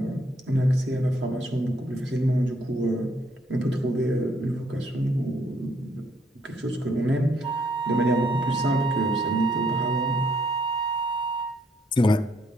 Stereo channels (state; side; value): normal; both; correlation 0.69